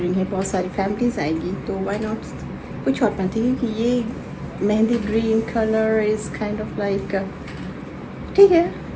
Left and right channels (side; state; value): both; identical; correlation 1.00